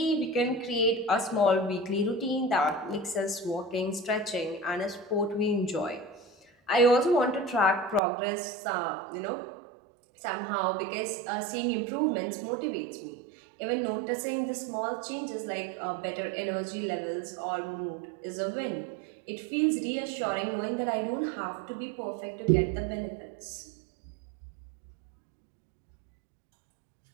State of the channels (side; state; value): left; drops out; at 8.0 s